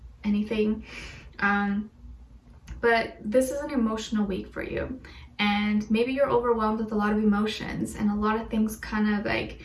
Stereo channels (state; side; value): identical; both; correlation 1.00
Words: anything. But this is an emotional week for you. And maybe you're overwhelmed with a lot of emotions and a lot of things kind of like,